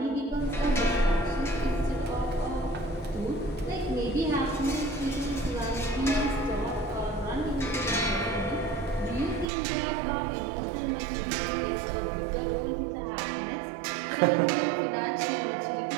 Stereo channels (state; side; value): drops out; left; at 9.5 s